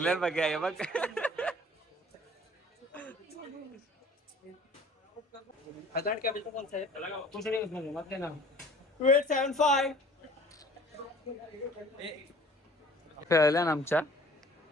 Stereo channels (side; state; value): both; normal; correlation 0.50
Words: बघा हे बघ. खेळल्या ना आमच्या